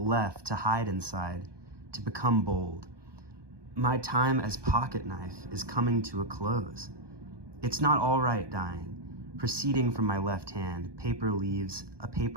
left to hide inside, to become bold. My time as pocket knife is coming to a close. It's not all right dying. Proceeding from my left hand, paper leaves, a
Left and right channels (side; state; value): left; late; 1.2 ms